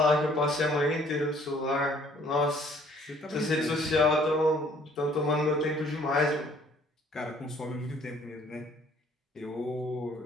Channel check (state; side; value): normal; both; correlation 0.59